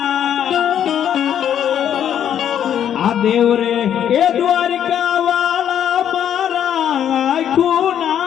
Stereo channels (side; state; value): right; quieter; 9.7 dB